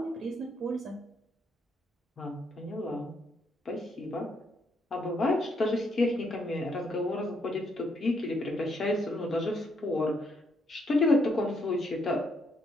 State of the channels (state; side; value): normal; both; correlation 0.74